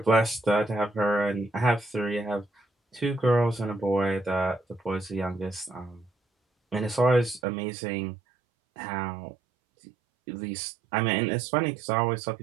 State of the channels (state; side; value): drops out; left; at 7.4 s